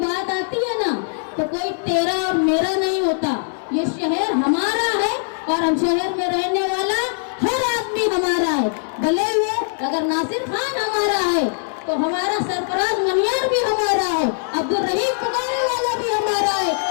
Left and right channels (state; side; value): silent; right; 62 dB below the other